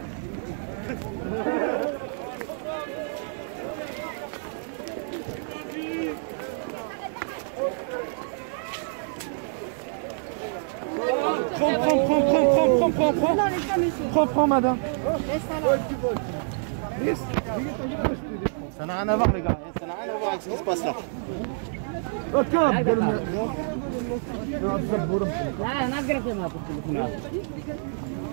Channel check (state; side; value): silent; left; digital silence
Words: Prends, madame. Ça n'a rien à voir, les gars. Ça n'a rien à voir avec ce qui se passe là.